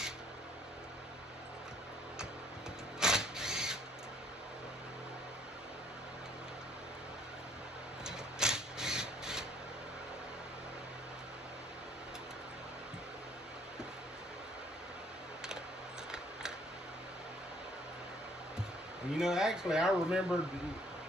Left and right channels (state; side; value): normal; both; correlation 0.61